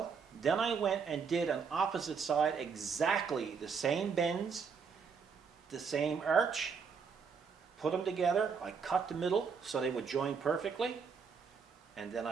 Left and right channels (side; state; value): left; quieter; 5.8 dB